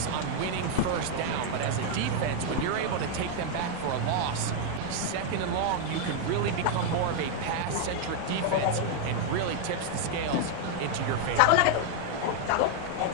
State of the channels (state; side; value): different; both; correlation 0.00